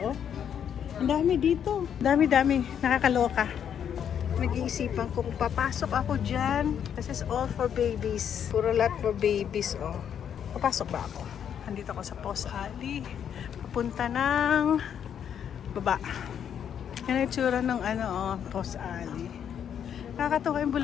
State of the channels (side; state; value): right; quieter; 8.6 dB